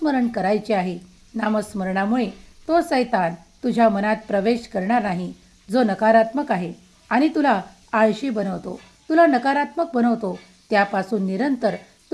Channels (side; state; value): both; identical; correlation 1.00